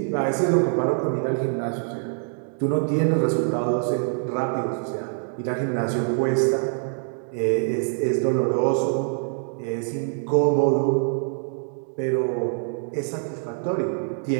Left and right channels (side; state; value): left; silent; digital silence